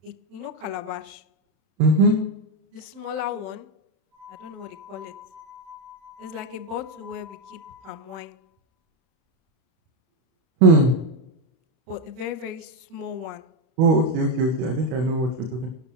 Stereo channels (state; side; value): late; left; 31 ms